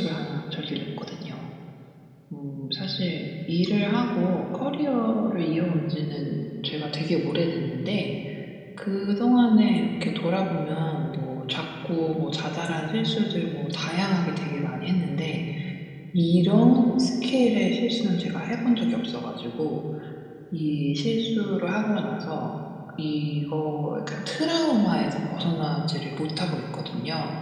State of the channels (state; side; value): identical; both; correlation 1.00